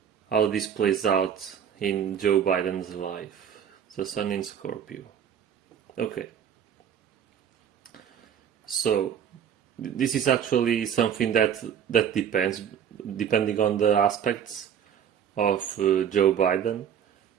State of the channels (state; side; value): quieter; left; 8.5 dB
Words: how this plays out in Joe Biden's life. The sun in Scorpio. Okay. So this is actually something that depends, depending on the aspects of Joe Biden.